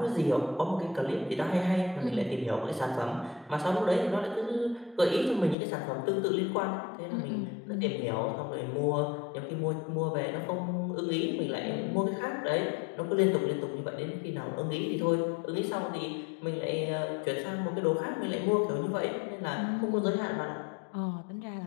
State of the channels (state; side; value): drops out; right; at 5.6 s